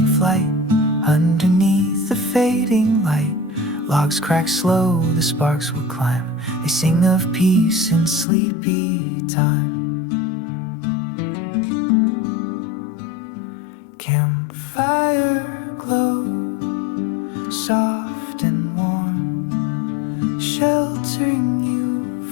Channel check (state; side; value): drops out; right; at 8.2 s